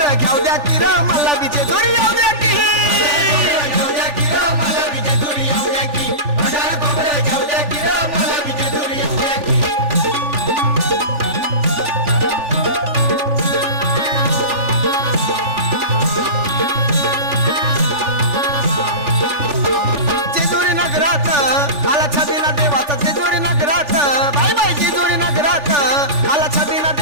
घ्याव द्या की र मला बी जेजुरी याव द्या की घेऊ द्या की र मला बी जेजुरी येऊ द्या की भंडारा खोबरं घेऊ द्या की र मला बी जेजुरी येऊ द्या की जेजुरी नगरात आला छबिना देवाचा जेजुरी नगरात बाय बाय जेजुरी नगरात आला छबिना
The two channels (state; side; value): late; left; 3.4 ms